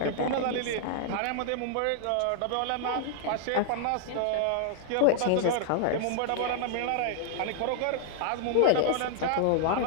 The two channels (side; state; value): both; different; correlation 0.00